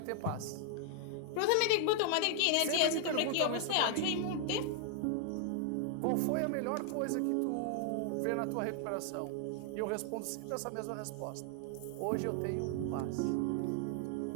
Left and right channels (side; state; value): both; different; correlation 0.00